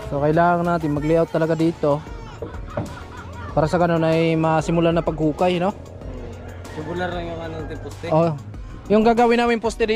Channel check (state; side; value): identical; both; correlation 1.00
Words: So kailangan natin mag-layout talaga dito. Para sa ganun ay masimulan na paghukay, no? Tubular lang yung anong poste. Oh. Yung gagawin namin poste